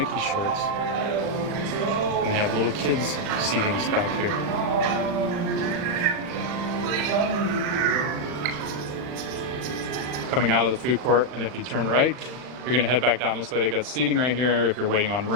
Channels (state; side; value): late; left; 39 ms